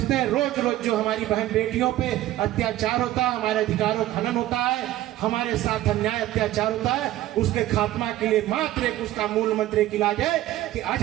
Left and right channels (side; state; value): left; quieter; 14.8 dB